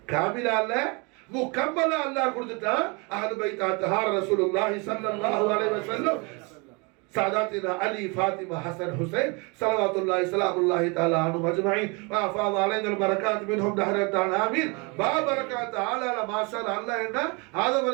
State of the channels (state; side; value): quieter; left; 30.3 dB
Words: காமிலா இல்ல முக்கம்மலா அல்லாஹ் கொடுத்துட்டான். அஹ்லு பைத் அத்ஹார் ரசூலுல்லாஹி ஸல்லல்லாஹு அலைஹி வஸல்லம் ساداتنا علي فاطمة حسن حسين صلوات الله سلام الله تعالى عنهم أجمعين وأفاض علينا البركات منهم دهر الدار آمين. بركات تعالى ما شاء الله إن هذا